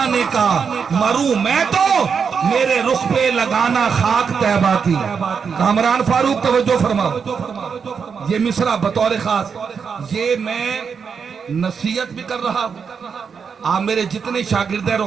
کا، مروں میں تو میرے رخ پہ لگانا خاک طیبہ کی۔ کامران فاروق توجہ فرماؤ، یہ مصرع بطور خاص یہ میں نصیحت بھی کر رہا ہوں، آپ میرے جتنے شاگرد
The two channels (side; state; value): left; quieter; 6.2 dB